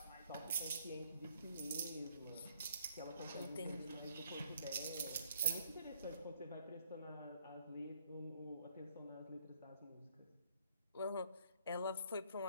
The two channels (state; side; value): inverted; both; correlation -0.66